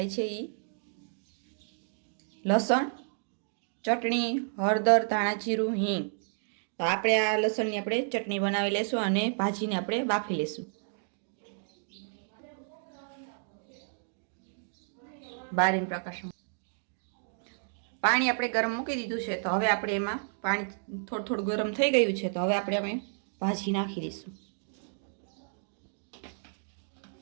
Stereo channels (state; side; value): silent; left; digital silence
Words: છે। લસણ, ચટણી, હળદર, ધાણા જીરું, હિંગ। તો આપણે આ લસણની આપણે ચટણી બનાવી લેશું અને ભાજીને આપણે બાફી લેશું। બારીને પ્રકાશ પાણી આપણે ગરમ મૂકી દીધું છે। તો હવે આપણે એમાં પાણી થોડું થોડું ગરમ થઈ ગયું છે। તો હવે આપણે અમે ભાજી નાખી દઈશું।